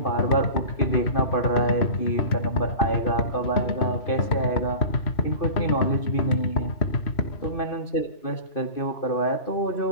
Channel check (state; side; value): late; right; 2.5 ms